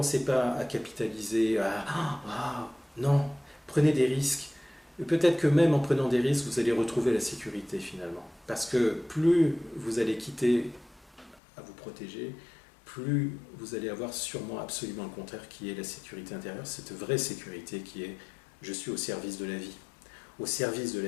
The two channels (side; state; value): right; drops out; at 11.4 s